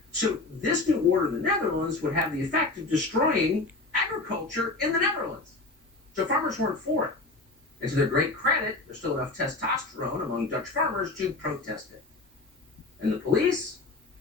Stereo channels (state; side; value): quieter; right; 3.3 dB